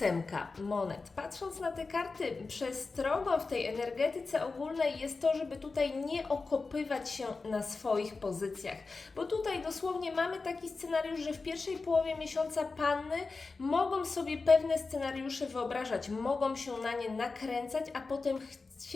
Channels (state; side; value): quieter; right; 4.0 dB